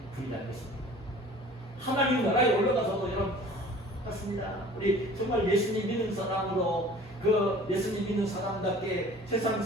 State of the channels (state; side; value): normal; both; correlation 0.47